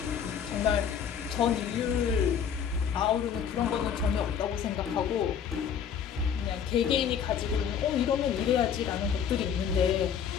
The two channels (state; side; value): quieter; right; 7.8 dB